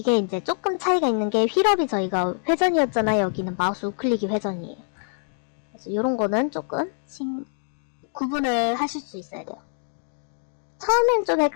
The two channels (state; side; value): silent; right; digital silence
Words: 이제 조금 차이가 있는 게 휠업이 저희가 회전이었잖아요. 여기는 마우스 우클릭이 회전이에요. 그래서 이런 거는 조금 구분을 하실 수 있어야 돼요. 처음엔 좀